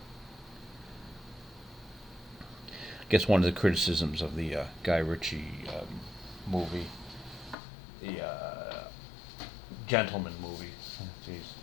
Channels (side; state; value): right; drops out; at 7.6 s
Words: I guess one of the criticisms of the Guy Ritchie movie, the Gentleman movie. Jeez,